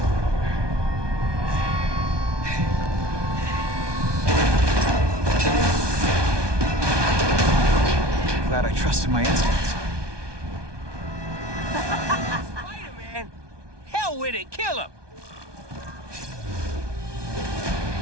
Glad I trusted my instincts. Spider-Man! Hell with it, kill him!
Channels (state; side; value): late; left; 1.2 ms